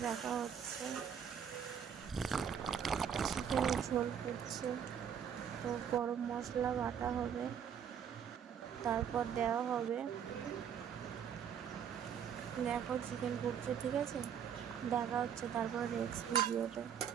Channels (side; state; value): left; quieter; 8.1 dB